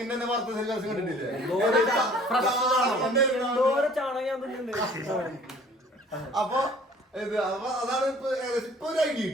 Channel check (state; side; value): normal; both; correlation 0.52